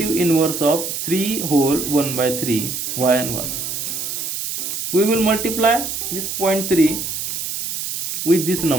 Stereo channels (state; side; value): noise; right; hiss, 4 dB below the sound